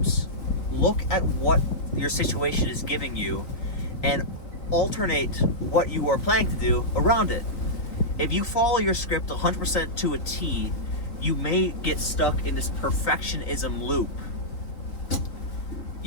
look at what your situation is giving you and alternate what you are planning to do around it. If you follow your script 100% to a T, you may get stuck in this perfectionism loop.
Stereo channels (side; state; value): right; late; 3.8 ms